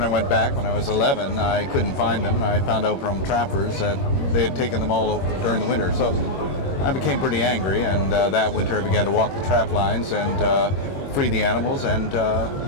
I went back, when I was 11, I couldn't find them, and I found out from trappers that they had taken them all over during the winter. So I became pretty angry, and that winter I began to walk the trap lines and free the animals and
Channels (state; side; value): late; right; 21 ms